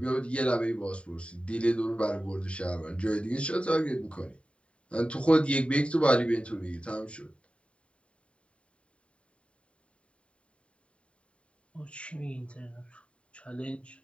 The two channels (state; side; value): late; right; 0.060 ms